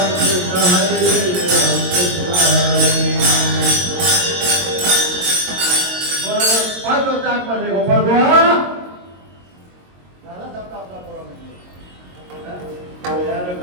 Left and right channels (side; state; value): left; late; 22 ms